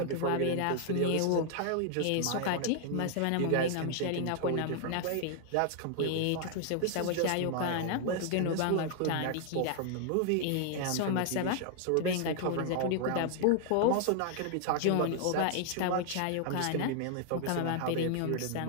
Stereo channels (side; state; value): both; different; correlation 0.00